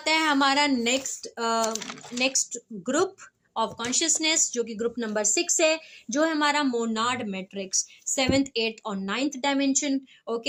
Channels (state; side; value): identical; both; correlation 1.00